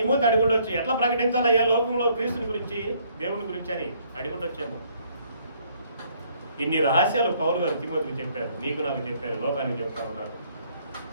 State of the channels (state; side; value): inverted; both; correlation -0.65